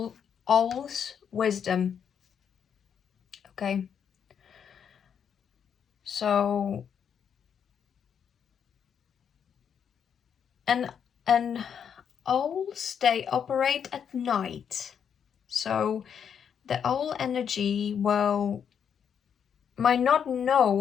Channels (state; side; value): quieter; right; 7.8 dB